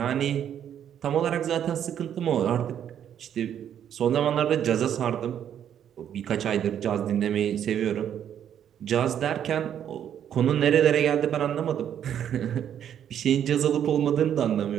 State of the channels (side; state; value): left; quieter; 9.6 dB